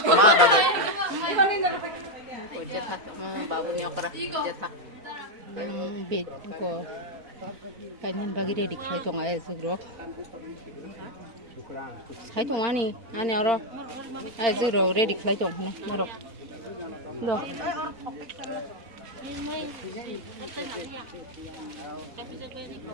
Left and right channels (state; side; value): late; left; 4.3 ms